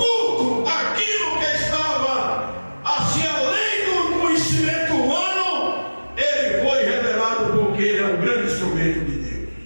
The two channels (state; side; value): inverted; both; correlation -1.00